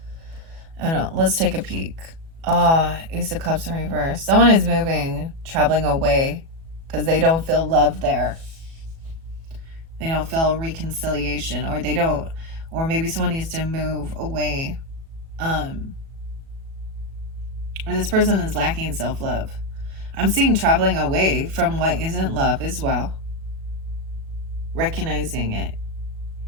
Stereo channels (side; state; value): left; late; 37 ms